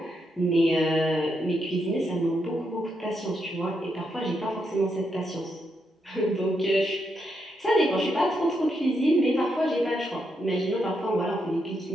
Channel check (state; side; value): normal; both; correlation 0.81